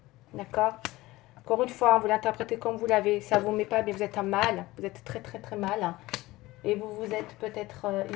D'accord? Encore une fois, vous l'interprétez comme vous l'avez. Ça ne vous met pas bien, vous êtes en mal. Vous êtes très très très mal. Hein, et vous vous êtes peut-être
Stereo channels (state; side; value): quieter; right; 18.9 dB